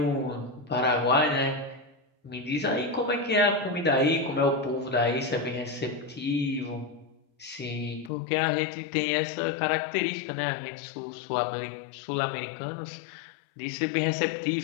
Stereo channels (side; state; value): right; drops out; at 8.1 s